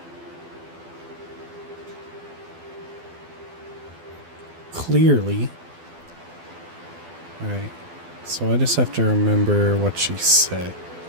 Clearly. Alright. So I just have to remember what she said.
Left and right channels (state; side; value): late; left; 12 ms